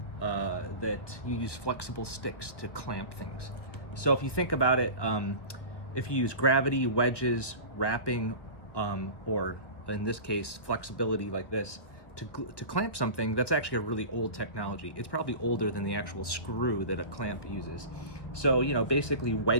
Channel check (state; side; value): late; right; 1.5 ms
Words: you use flexible sticks to clamp things. So if you think about it, if you use gravity, wedges, wrapping, or in this case, flexibility like this, to clamp something, that's actually a really old technology. It's probably older than the actual screw that a clamp uses. So, basically